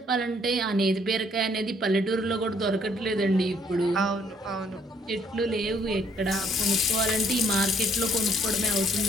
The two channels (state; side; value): normal; both; correlation 0.66